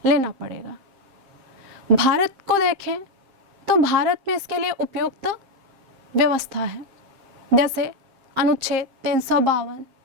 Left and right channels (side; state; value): left; late; 7.6 ms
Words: लेना पड़ेगा। भारत को देखें तो भारत में इसके लिए उपयुक्त व्यवस्था है, जैसे अनुच्छेद 352,